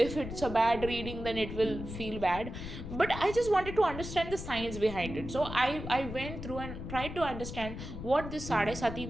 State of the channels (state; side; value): noise; left; rumble, 8 dB below the sound